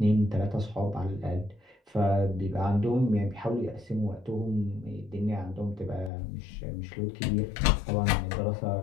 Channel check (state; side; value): drops out; right; at 6.1 s